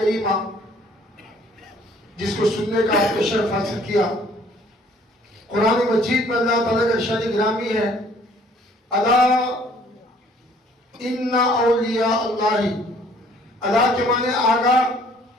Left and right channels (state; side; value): normal; both; correlation 0.58